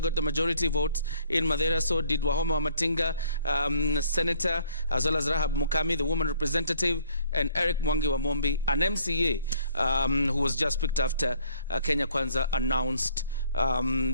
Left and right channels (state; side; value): inverted; both; correlation -0.61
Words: got the majority votes in Mathira, so did Wahome Wamatinga, Senator, as well as Rahab Mukami, the woman representative, and Eric Mwangi wa Mombi, an MCA who was just picked after Kenya Kwanza announced